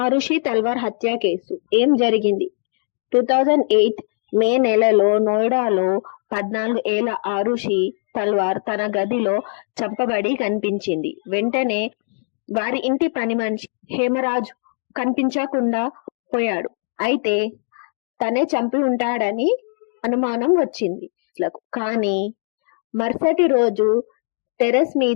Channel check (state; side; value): silent; right; 59 dB below the other